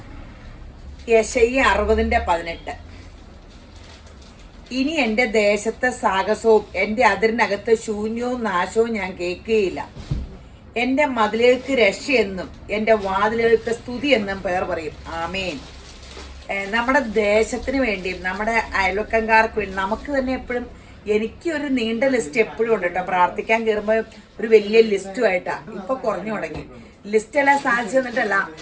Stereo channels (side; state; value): both; identical; correlation 1.00